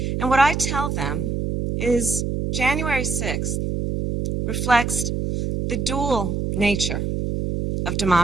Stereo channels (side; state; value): right; noise; hum, 1 dB below the sound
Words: And what I tell them is January 6th reflects the dual nature of